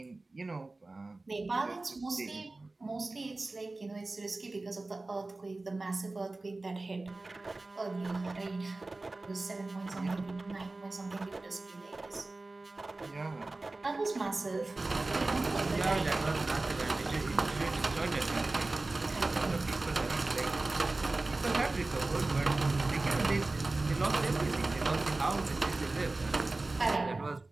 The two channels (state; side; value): quieter; left; 3.2 dB